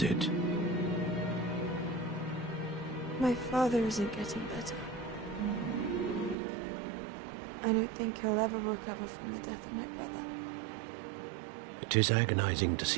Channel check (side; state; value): left; drops out; at 6.4 s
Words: it? My father isn't getting better. I don't think he'll ever recover from the death of my brother. It is agonizing to